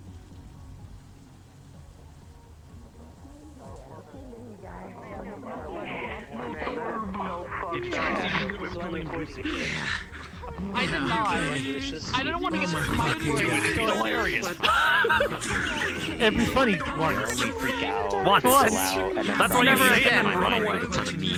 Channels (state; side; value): identical; both; correlation 1.00